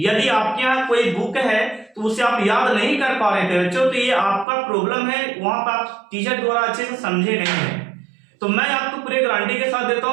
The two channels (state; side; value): drops out; left; at 4.5 s